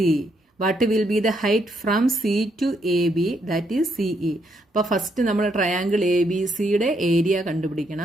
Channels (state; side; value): normal; both; correlation 0.75